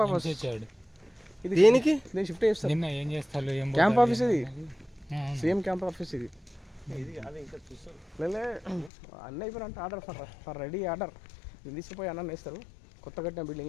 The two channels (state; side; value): drops out; right; at 8.9 s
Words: ఆఫీస్ ఇది దేనికి నేను షిఫ్ట్ చేస్తాను. నిన్న ఏం చేస్తారు, క్యాంప్ ఆఫీస్ ఇది, సేమ్ క్యాంప్ ఆఫీస్ ఇది. లేలే అన్న అయిపోయినంటే ఆర్డర్ ఫర్ రెడీ ఆర్డర్ తీసుకుపోయి అన్న వేస్తారు కొత్త కట్టిన